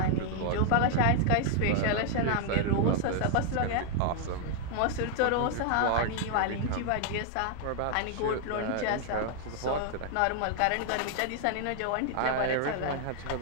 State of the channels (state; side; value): different; both; correlation 0.00